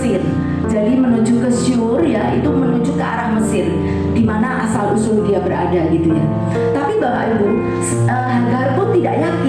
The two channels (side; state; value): both; identical; correlation 1.00